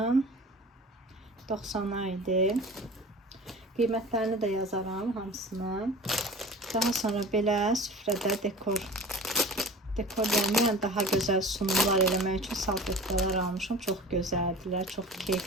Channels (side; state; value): both; normal; correlation 0.38